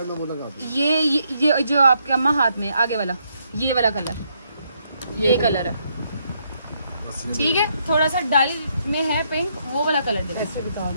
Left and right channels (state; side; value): inverted; both; correlation -0.75